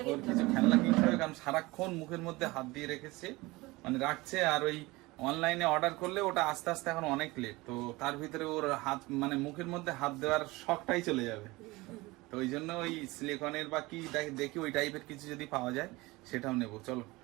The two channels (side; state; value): left; quieter; 21.8 dB